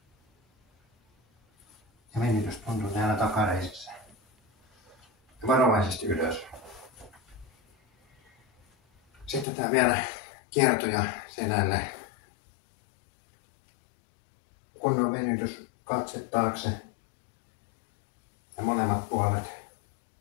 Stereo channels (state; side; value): drops out; right; at 9.5 s